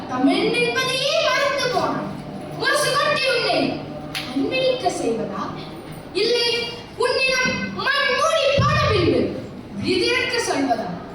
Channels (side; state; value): both; identical; correlation 1.00